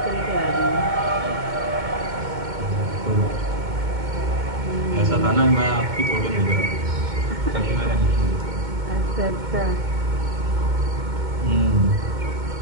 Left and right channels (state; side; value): late; left; 2.2 ms